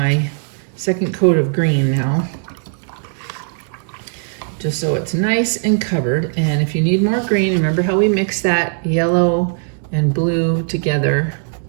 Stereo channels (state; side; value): silent; left; digital silence